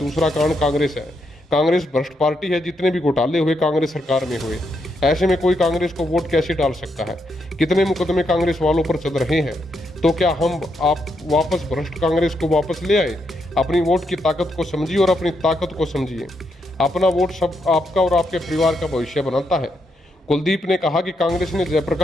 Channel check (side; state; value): both; normal; correlation 0.80